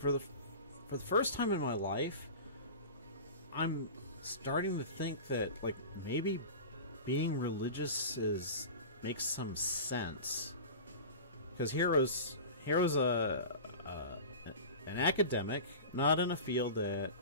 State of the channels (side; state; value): both; inverted; correlation -0.33